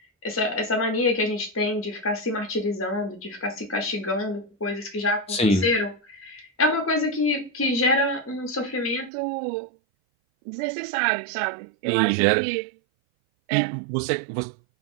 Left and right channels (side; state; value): left; drops out; at 9.1 s